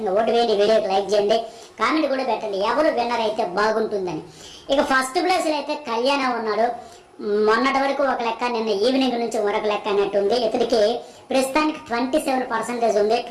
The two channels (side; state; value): both; identical; correlation 1.00